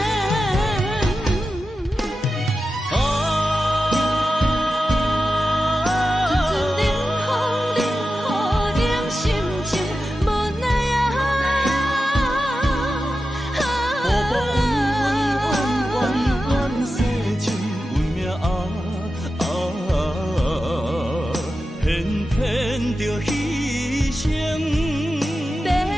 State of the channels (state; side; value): normal; both; correlation 0.92